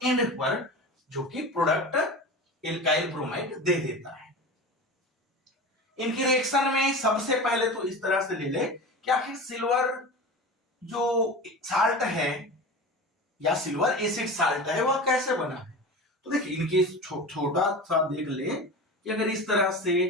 एंड पर जो कि प्रोडक्ट एल्काइल ब्रोमाइड दे देता है। इनकी रिएक्शन में सबसे पहले तो इस तरह से ले ले कि आखिर सिल्वर जो साल्ट है या सिल्वर एसिड साल्ट है वह कैसे बना है। तो देखिए इनके छोटा सा देख ले कि अगर इस तरह से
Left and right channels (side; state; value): both; normal; correlation 0.31